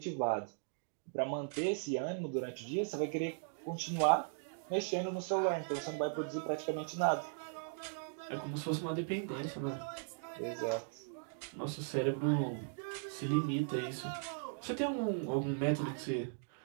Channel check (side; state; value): left; silent; digital silence